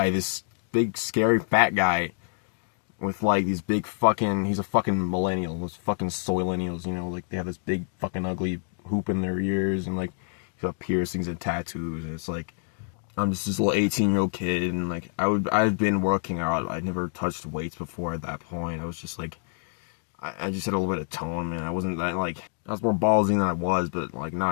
this big scary fat guy with like these big fucking, he's a fucking millennial, those fucking soy-millennials, you know, like they have this big fucking ugly hoop in their ears, and like he's got piercings and tattoos, and it's like, I'm just this little 18-year-old kid, and like I've been working out. I'd never touched weights before at that point. I was just like, I just had a little bit of tone, man. I wasn't that like, I was more ballsy than I was, but like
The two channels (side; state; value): right; silent; digital silence